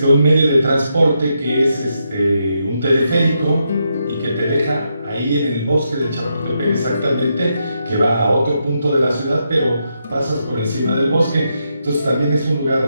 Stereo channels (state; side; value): inverted; both; correlation -0.82